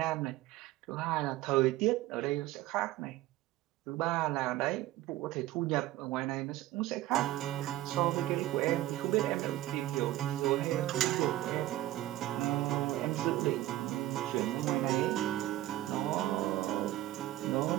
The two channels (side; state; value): left; quieter; 15.4 dB